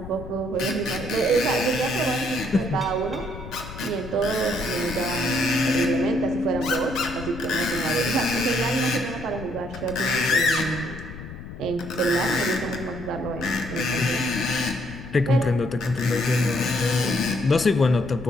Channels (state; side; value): noise; left; rumble, 12 dB below the sound